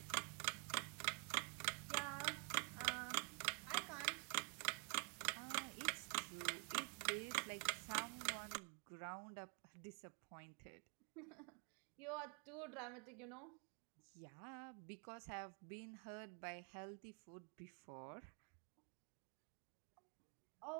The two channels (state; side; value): quieter; left; 38.3 dB